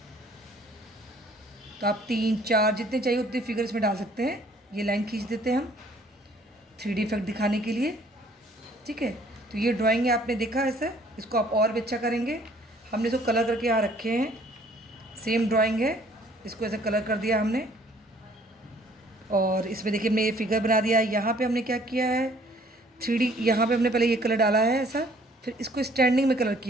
तो आप 3 4 जितने चाहिए उतने फिगर इसमें डाल सकते हैं। ये लाइन खींच देते हैं हम 3D इफेक्ट दिखाने के लिए, ठीक है। तो ये ड्राइंग है, आपने देखा ऐसा। इसको आप और भी अच्छा करेंगे। हमने इसको कलर करके यहाँ रखे हैं। सेम ड्राइंग है, इसको ऐसा कलर कर दिया हमने। और इसमें देखिए हमने ये फिगर बना दिया। यहाँ पे हमने क्या किया है, 3D यहाँ पे हमने पहले ये कलर डाला है ऐसा। फिर इसको स्टैंडिंग में कलर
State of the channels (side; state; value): both; normal; correlation 0.59